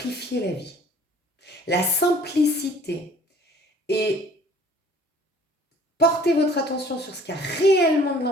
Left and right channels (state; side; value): normal; both; correlation 0.53